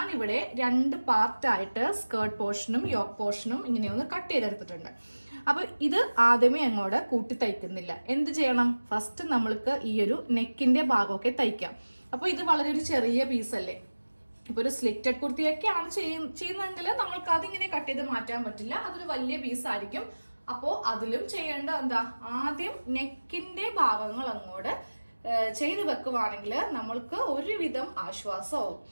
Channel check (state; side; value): inverted; both; correlation -1.00